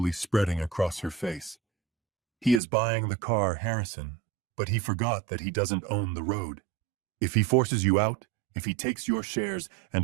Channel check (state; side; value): drops out; left; at 2.6 s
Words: spreading across her face. He is buying the car, Harrison, but he forgot that he doesn't own the road. If he forces you out, if he takes your shares and